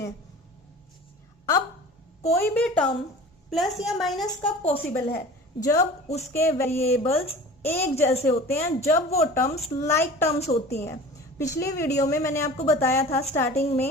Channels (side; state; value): both; normal; correlation 0.39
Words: अब कोई भी टर्म प्लस या माइनस कब पॉसिबल है, जब उसके वेरिएबल्स एक जैसे होते हैं, जब वो टर्म्स लाइक टर्म्स होती हैं। पिछली वीडियो में मैंने आपको बताया था स्टार्टिंग